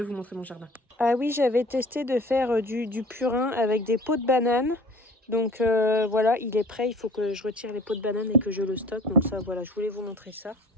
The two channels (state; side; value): normal; both; correlation 0.47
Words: vous montrer mon jardin. Ah oui, j'avais testé de faire du purin avec des pots de banane. Donc voilà, il est prêt, il faut que je retire les pots de banane et que je le stocke. Donc ça, voilà, je voulais vous montrer ça.